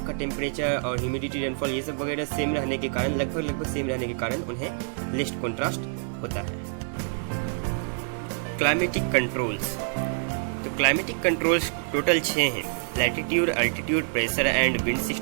का टेम्परेचर और ह्यूमिडिटी, रेनफॉल ये सब वगैरह सेम रहने के कारण, लगभग सेम रहने के कारण उन्हें लिस्ट कॉन्ट्रास्ट होता है। Climatic controls. तो क्लाइमेटिक कंट्रोल्स टोटल 6 हैं। Latitude, altitude, pressure and wind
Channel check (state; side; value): silent; left; digital silence